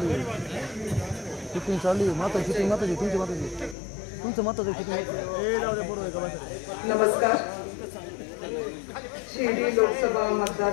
शूटिंग चालू आहे माता शूटिंग माताजी तुमचं माताचं नमस्कार। शिर्डी लोकसभा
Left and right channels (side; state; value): right; drops out; at 3.8 s